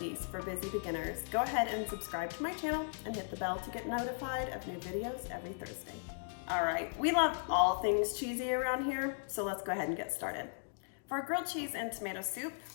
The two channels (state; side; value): silent; right; digital silence